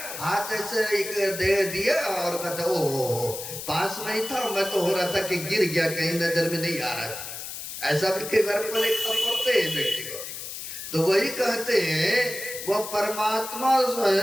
हाथ ऐसे एक दे दिया और कहता ओ पास में ही था, मैं तो हो रहा था कि गिर गया, कहीं नजर में नहीं आ रहा था। ऐसा भी कई बार पढ़ते हैं व्यक्ति को। तो वही कहते हैं वो परमात्मा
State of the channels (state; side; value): noise; left; hiss, 8 dB below the sound